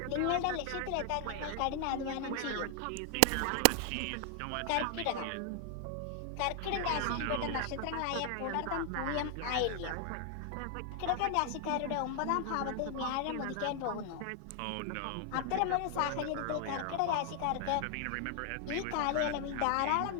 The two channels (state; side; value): different; both; correlation 0.00